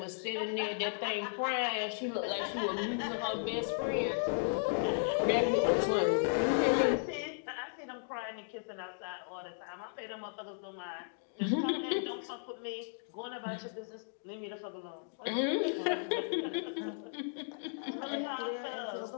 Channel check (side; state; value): right; silent; digital silence